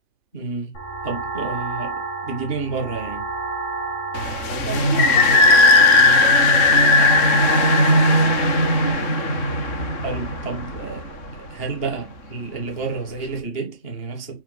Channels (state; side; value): late; right; 3.6 ms